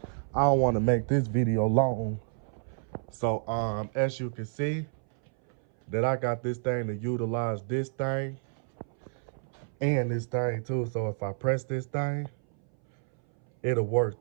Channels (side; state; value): left; silent; 58 dB below the other